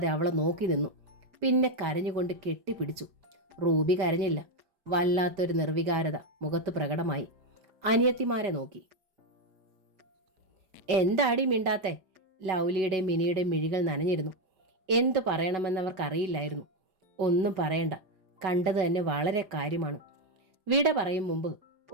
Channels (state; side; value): late; left; 4.9 ms